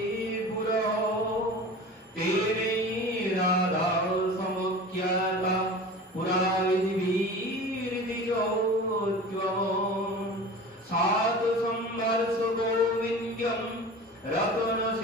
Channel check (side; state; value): both; normal; correlation 0.37